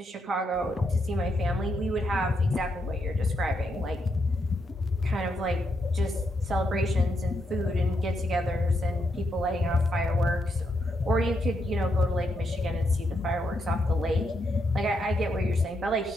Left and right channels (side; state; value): both; normal; correlation 0.80